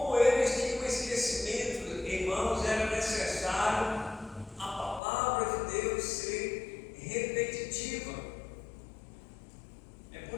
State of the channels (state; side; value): drops out; right; at 5.0 s